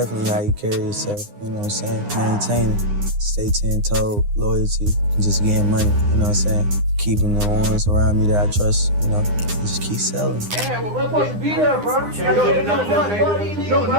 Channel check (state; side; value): late; left; 9.8 ms